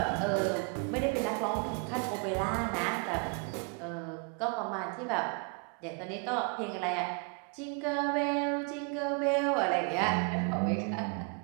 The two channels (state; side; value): quieter; left; 36.0 dB